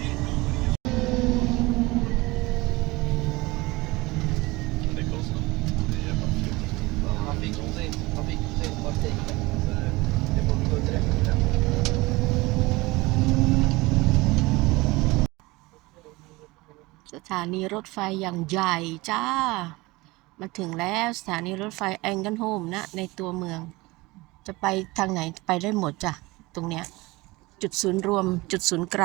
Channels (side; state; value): left; quieter; 21.9 dB